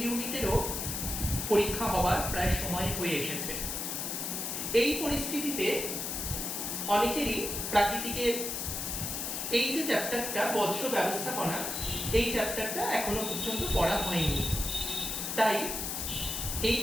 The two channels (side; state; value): left; noise; hiss, 3 dB below the sound